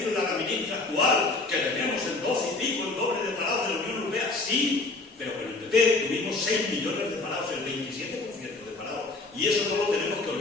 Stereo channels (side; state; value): right; quieter; 3.4 dB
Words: a la ministra actual que tenemos el 12 y pico, el doble de parados de la Unión Europea. Sí, pero con el PP tuvimos 6 millones de parados, el 27% de parados. Y eso no lo tenemos que